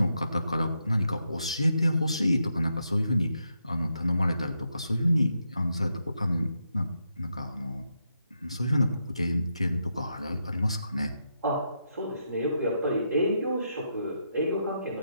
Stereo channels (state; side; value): inverted; both; correlation -0.82